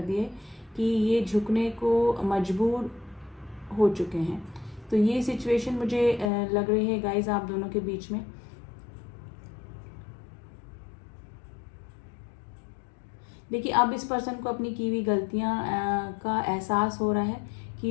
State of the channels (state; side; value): drops out; right; at 6.3 s